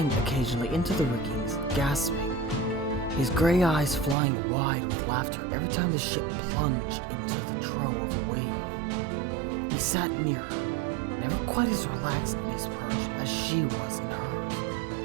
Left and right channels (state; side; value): drops out; left; at 4.2 s